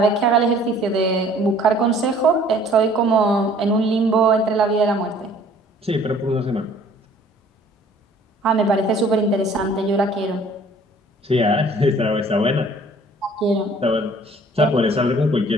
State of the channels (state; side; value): normal; both; correlation 0.54